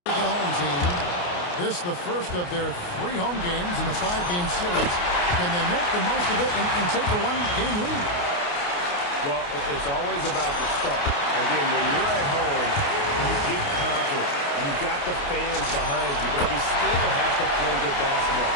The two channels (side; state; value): right; late; 28 ms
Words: at the home team. This the first of their 3 home games in the 5-game series. Can they make the most of it and take a 1-game lead? Well, it's always about the start. Again, when you're at home, you get confident. You've got the fans behind you, but you still have to play good basketball.